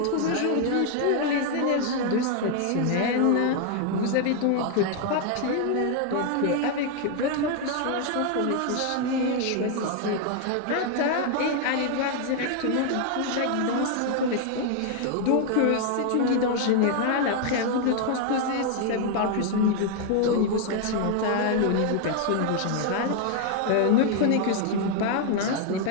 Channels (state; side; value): different; both; correlation 0.00